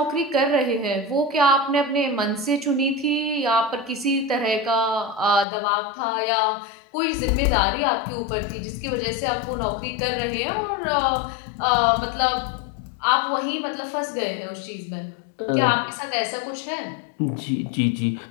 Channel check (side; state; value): right; drops out; at 5.5 s